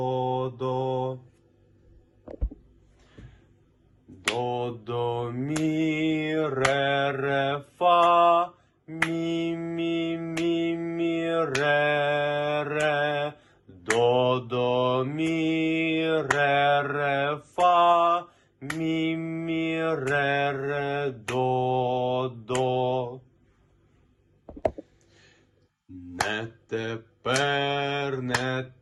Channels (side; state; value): both; identical; correlation 1.00